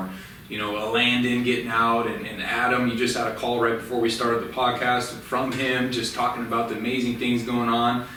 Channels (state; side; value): identical; both; correlation 1.00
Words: a Landon getting out, and Adam, you just had a call right before we started the podcast from him, just talking about the amazing things going on.